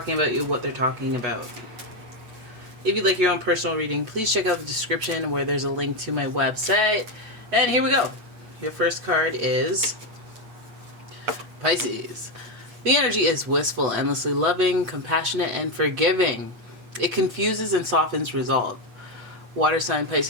about you, what they're talking about. If you'd like your own personal reading, please check out the description where there's a link to my website. And here we go. Your first card is Pisces. The energy is wistful, endlessly loving, compassionate, and forgiving. It confuses and softens resolve. Water sign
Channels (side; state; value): left; late; 8.3 ms